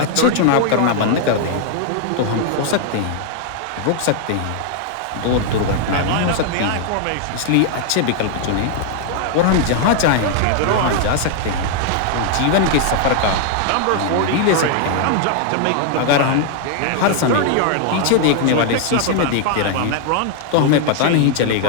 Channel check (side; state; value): both; different; correlation 0.00